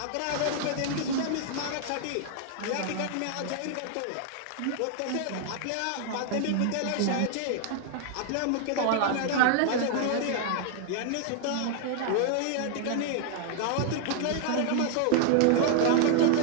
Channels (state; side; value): different; both; correlation 0.00